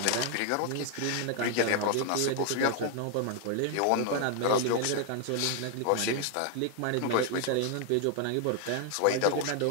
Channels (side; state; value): both; different; correlation 0.00